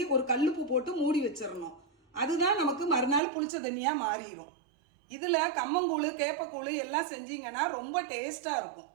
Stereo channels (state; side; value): drops out; left; at 3.2 s